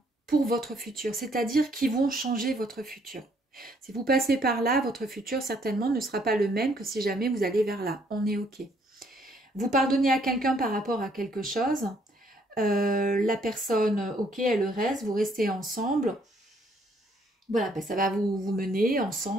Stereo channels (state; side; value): normal; both; correlation 0.67